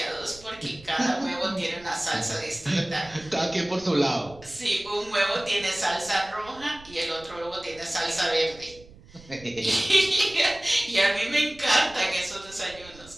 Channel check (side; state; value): right; noise; rumble, 22 dB below the sound